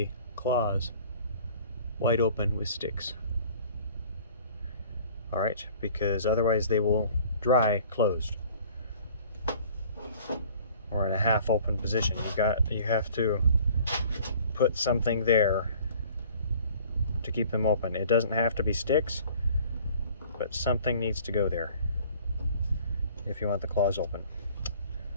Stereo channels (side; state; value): both; inverted; correlation -0.51